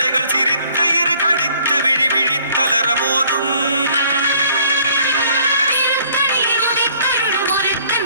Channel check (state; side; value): inverted; both; correlation -0.59